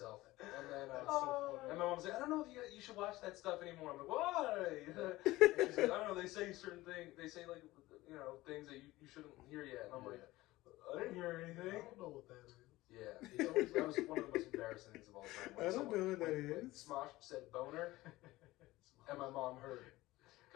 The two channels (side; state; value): right; quieter; 18.2 dB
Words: And then, That's so funny. and my mom was like, "I don't know if you should watch that stuff anymore." I'm like, "Why?" And she's like, "I don't know. They say certain things. They say things that you shouldn't hear yet." And I'm like, "I didn't hear anything." I don't know what that is. Yeah, that was one of the most embarrassing things of all time. I don't know what that when is. Smosh said boner, and my mom heard.